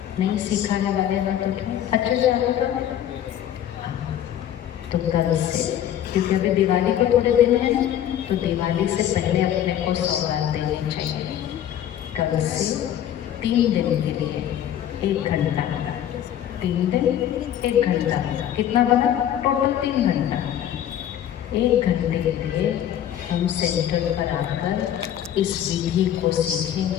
नहीं सिखाने वाले ना तो अच्छा जाएगा। तो कल से, क्योंकि अभी दिवाली को थोड़े दिन है, तो दिवाली से पहले अपने को सौगात देनी चाहिए। कल से 3 दिन के लिए 1 घंटा, 3 दिन 1 घंटा, कितना बना? टोटल 3 घंटा। 1 घंटे के लिए हम सेंटर पर आकर इस विधि को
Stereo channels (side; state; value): right; quieter; 10.8 dB